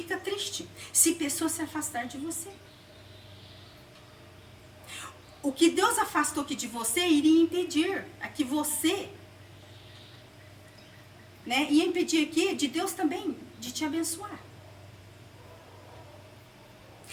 triste se pessoas se afastar de você. O que Deus afastou aqui de você iria impedir a que você, né, ia impedir aqui de Deus também de te abençoar.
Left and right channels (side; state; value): both; identical; correlation 1.00